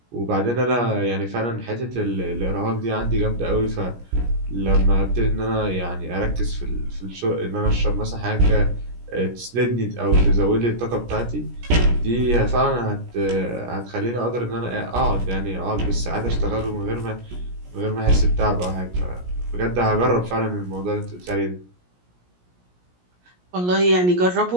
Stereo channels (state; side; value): late; left; 17 ms